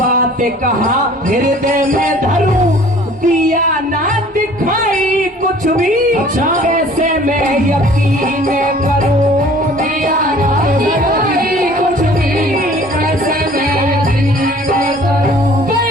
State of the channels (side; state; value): both; normal; correlation 0.51